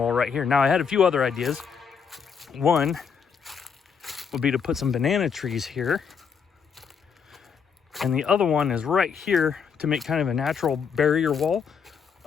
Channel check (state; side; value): quieter; right; 6.4 dB